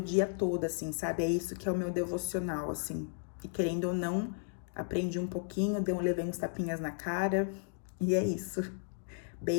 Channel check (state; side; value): silent; right; digital silence